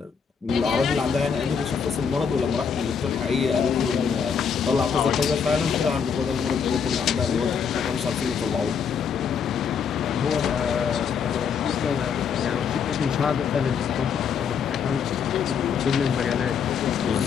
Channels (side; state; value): right; quieter; 6.7 dB